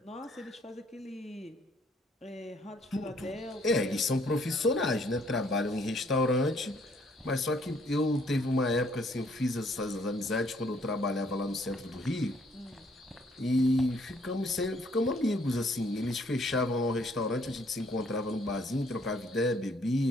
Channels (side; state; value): both; normal; correlation 0.65